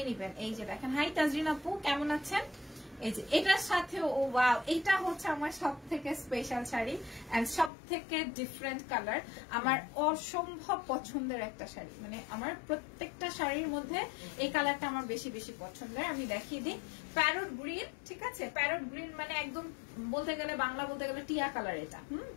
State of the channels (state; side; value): drops out; right; at 7.7 s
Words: নেবেন। এই যে দেখেন, হাই তাজরিন আপু, কেমন আছেন? এই যে এটার সাথে ও ওয়াও, এটা হচ্ছে আমার সব থেকে স্পেশাল শাড়ি এন্ড সব থেকে ডিফারেন্ট কালার। আমার অসম্ভব পছন্দের একটা শাড়ি, মানে আমার প্রত্যেকটা শাড়ির মধ্যে এই কালারটা আমার বেশি বেশি পছন্দের। আমি দেখিয়ে দিই, প্যারট গ্রিন, ঠিক আছে? প্যারট গ্রিন মানে একদম বলতে গেলে বাংলা বলতে গেলে টিয়া কালার এটা।